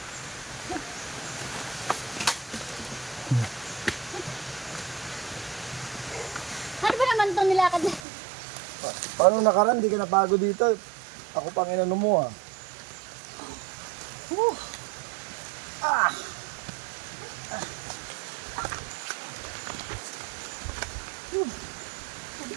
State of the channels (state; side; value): drops out; left; at 8.0 s